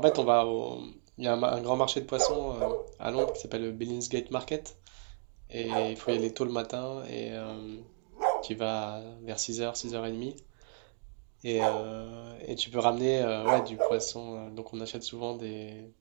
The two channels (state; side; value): silent; left; 56 dB below the other